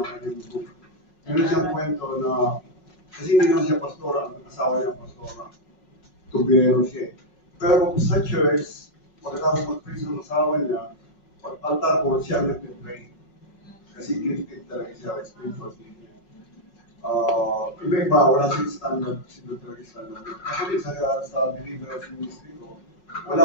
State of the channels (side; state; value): right; late; 5.5 ms